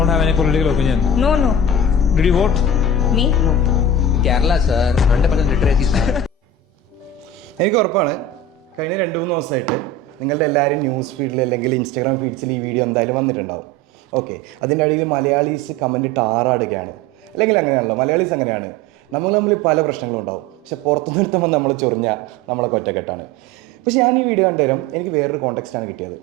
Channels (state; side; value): normal; both; correlation 0.33